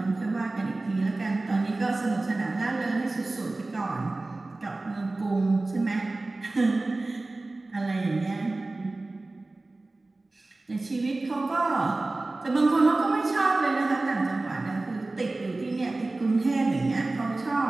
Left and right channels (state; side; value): quieter; left; 3.1 dB